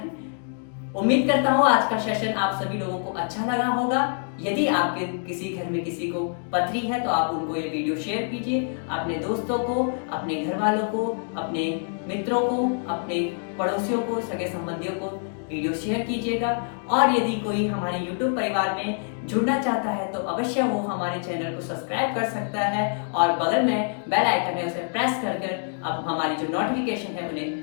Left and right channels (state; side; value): silent; right; 61 dB below the other